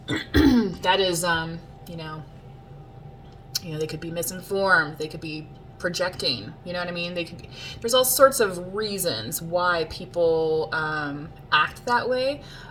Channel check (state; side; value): identical; both; correlation 1.00